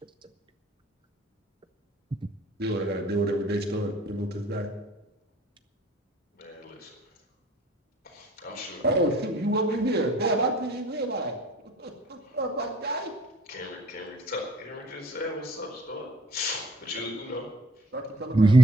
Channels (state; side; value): normal; both; correlation 0.53